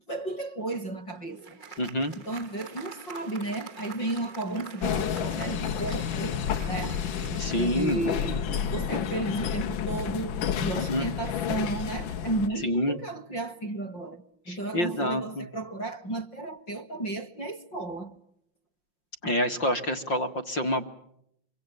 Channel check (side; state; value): right; late; 5.7 ms